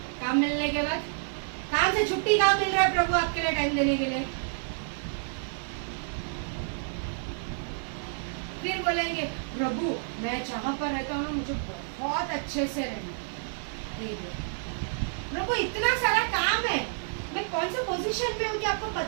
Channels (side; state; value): left; silent; digital silence